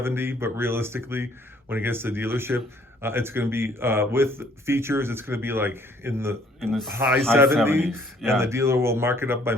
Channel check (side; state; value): both; normal; correlation 0.61